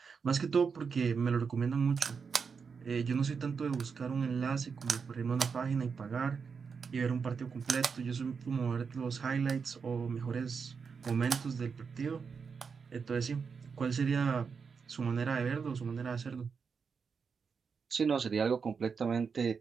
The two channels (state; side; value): quieter; left; 5.7 dB